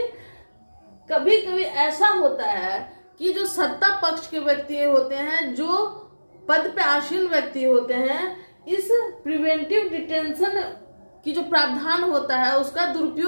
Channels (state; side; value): inverted; both; correlation -1.00